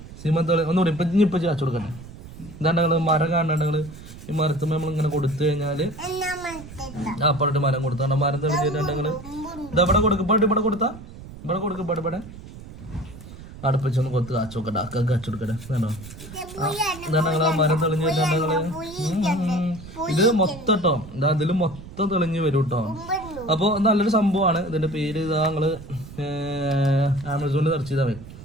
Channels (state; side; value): noise; right; rumble, 15 dB below the sound